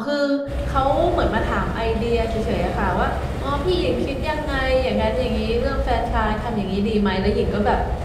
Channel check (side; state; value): both; identical; correlation 1.00